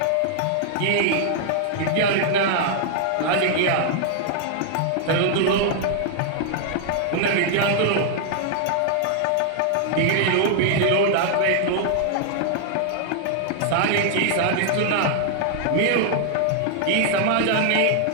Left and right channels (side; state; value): both; different; correlation 0.00